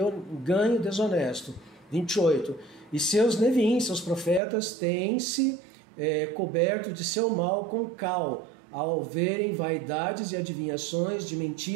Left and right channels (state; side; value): drops out; left; at 4.4 s